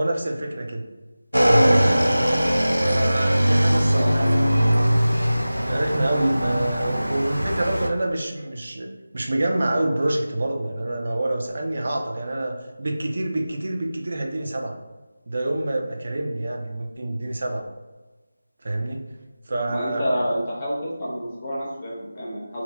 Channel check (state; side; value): inverted; both; correlation -0.97